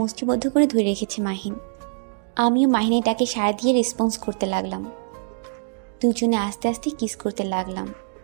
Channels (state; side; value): silent; left; 63 dB below the other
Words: মুষ্টিবদ্ধ করে ধরে রেখেছে মাহিন। আমিও মাহিনের ডাকে সাড়া দিয়ে রেসপন্স করতে লাগলাম। দুজনে আস্তে আস্তে কিস করতে লাগলাম